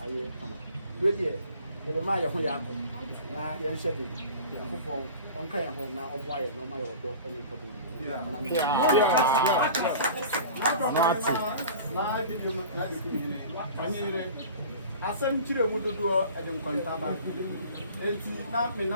ayɛ kama deɛ yɛbɛma yɛ ho yɛ akɔ na yɛnhyɛ de Nyankopɔn ɔnka yɛn ho na ɔmmoa yɛ na ɔma yɛ ɔdɔ ne nkɔdɔ asɛm kyerɛ mu dodoɔ ɛde nkɔntaba enti na me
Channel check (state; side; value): inverted; both; correlation -0.40